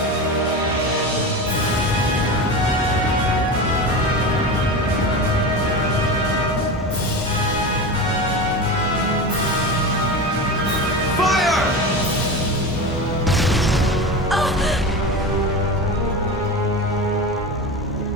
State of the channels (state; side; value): normal; both; correlation 0.25